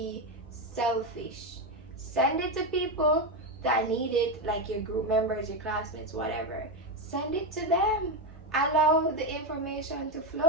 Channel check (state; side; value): normal; both; correlation 0.10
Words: selfish. Send it to people that need it, like your group members, your classmates, whatever. Send it to them. Allow the information to